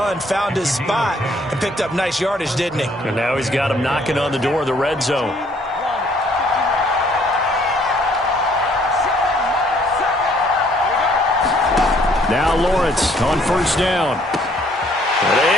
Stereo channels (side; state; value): both; normal; correlation 0.63